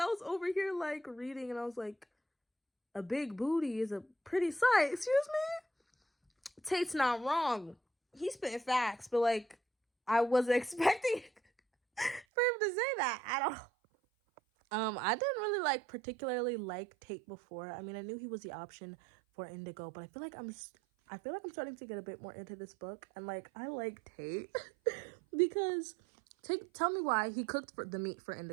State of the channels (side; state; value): left; drops out; at 12.2 s